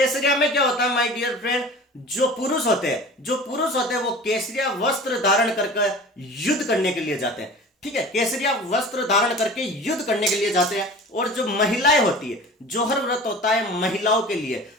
में क्या होता है माय डियर फ्रेंड, जो पुरुष होते हैं वो केसरिया वस्त्र धारण करके युद्ध करने के लिए जाते हैं। ठीक है, केसरिया वस्त्र धारण करके युद्ध करने के लिए जाते हैं। और जो महिलाएं होती है, जौहर व्रत होता है महिलाओं के लिए,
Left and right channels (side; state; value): both; normal; correlation 0.39